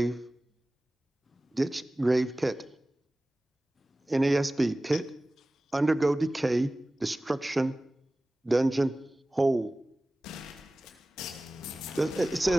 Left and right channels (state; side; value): normal; both; correlation 0.97